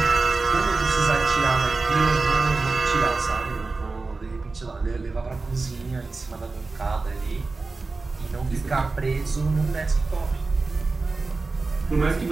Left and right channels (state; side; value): quieter; left; 3.8 dB